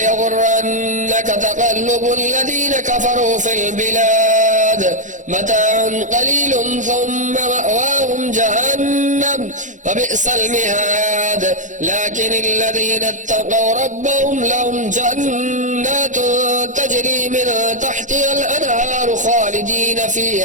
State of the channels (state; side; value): late; left; 0.36 ms